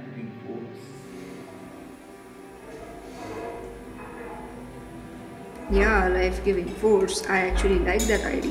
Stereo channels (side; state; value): both; identical; correlation 1.00